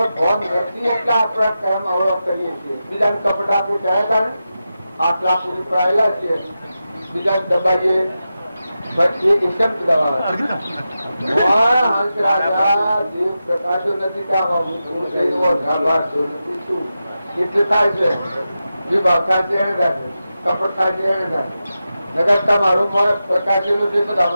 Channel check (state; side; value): inverted; both; correlation -0.91